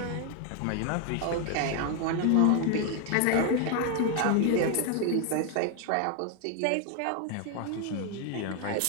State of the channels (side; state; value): both; different; correlation 0.01